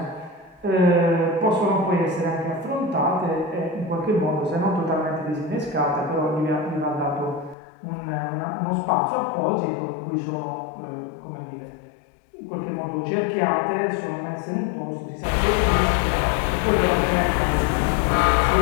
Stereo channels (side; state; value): right; drops out; at 7.6 s